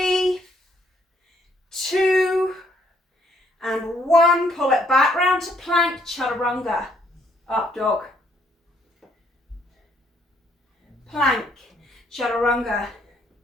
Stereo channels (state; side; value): normal; both; correlation 0.68